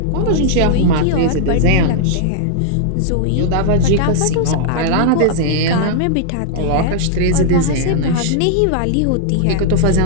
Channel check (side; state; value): both; different; correlation -0.01